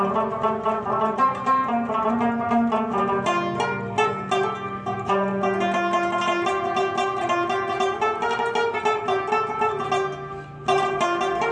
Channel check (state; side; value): identical; both; correlation 1.00